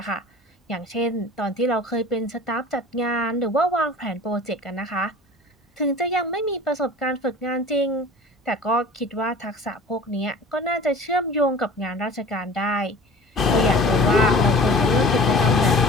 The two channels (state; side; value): normal; both; correlation 0.42